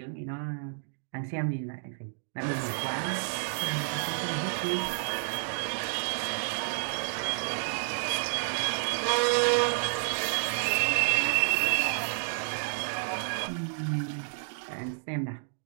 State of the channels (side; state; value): left; silent; digital silence